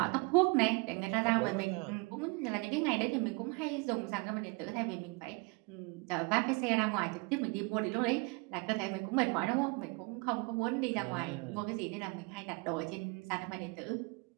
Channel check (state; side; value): quieter; left; 30.1 dB